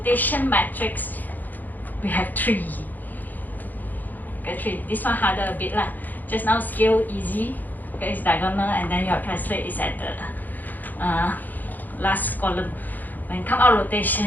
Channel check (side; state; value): right; late; 0.085 ms